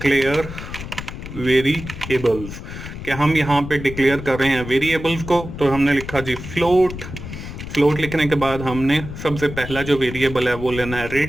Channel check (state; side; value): noise; left; rumble, 10 dB below the sound